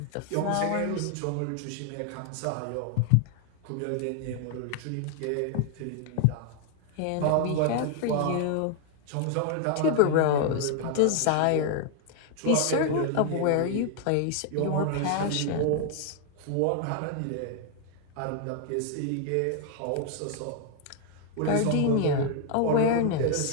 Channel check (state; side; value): different; both; correlation 0.00